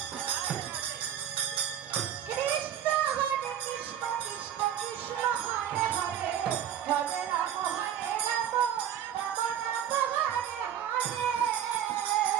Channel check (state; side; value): quieter; left; 10.0 dB